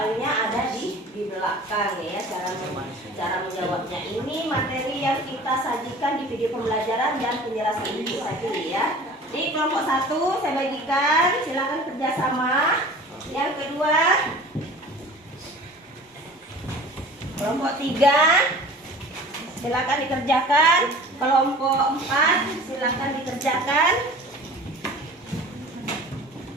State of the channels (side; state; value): both; normal; correlation 0.42